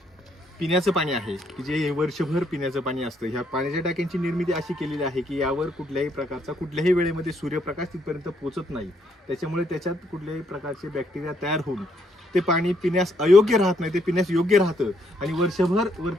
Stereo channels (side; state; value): both; normal; correlation 0.72